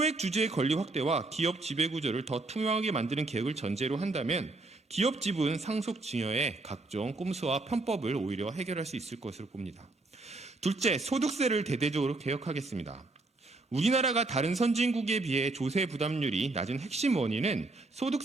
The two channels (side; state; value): left; quieter; 3.1 dB